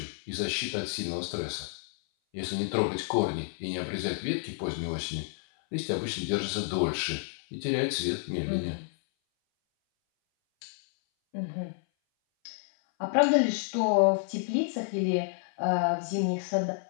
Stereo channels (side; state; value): right; silent; 57 dB below the other